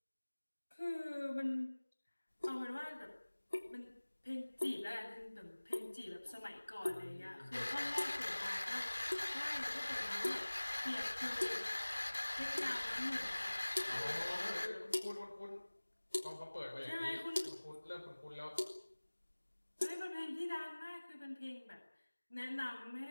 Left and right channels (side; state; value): both; inverted; correlation -1.00